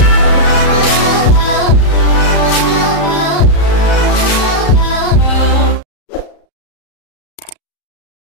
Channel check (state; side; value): late; right; 34 ms